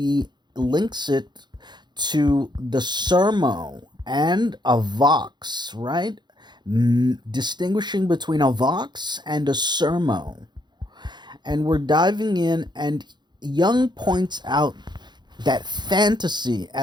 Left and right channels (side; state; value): left; late; 0.21 ms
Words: links it to the sermo and a vox, right? Distinguishing between a vox and a sermo. And we're diving in, and Jung points out that fantasy